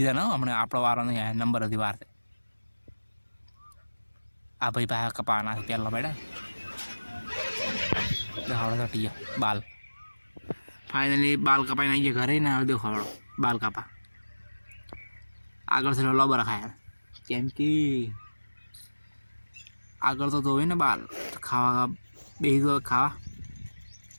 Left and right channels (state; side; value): inverted; both; correlation -1.00